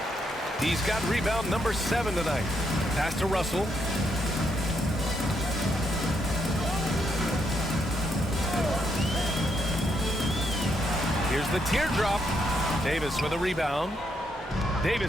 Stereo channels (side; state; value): both; normal; correlation 0.77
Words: He's got rebound number 7 tonight. Pass to Russell. Here's the teardrop. Davis with a rebound.